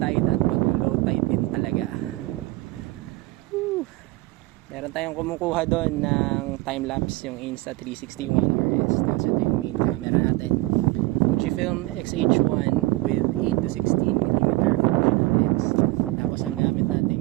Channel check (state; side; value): quieter; left; 20.8 dB